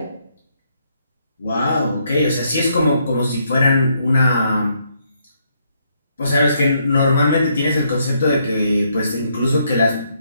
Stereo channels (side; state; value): both; inverted; correlation -0.73